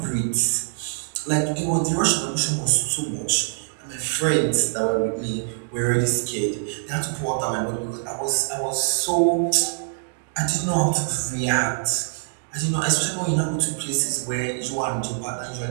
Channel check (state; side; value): silent; left; digital silence